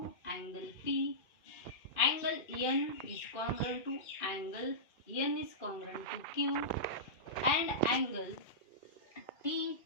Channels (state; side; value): late; right; 2.4 ms